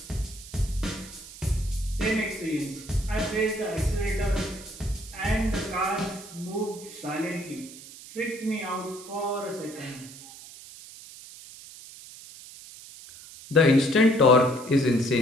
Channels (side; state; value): right; noise; hiss, 16 dB below the sound